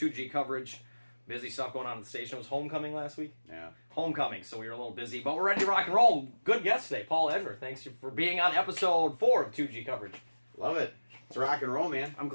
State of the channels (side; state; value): both; inverted; correlation -1.00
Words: coverage. Busy stuff going on at the station. It was homecoming last week? Yeah. Homecoming, so we were a little busy, but we're ready to rock and roll. Good guest today, Paul Ebner. Thanks for being on episode 4 of 2G coverage. Love it. It's rock and roll, man. I'm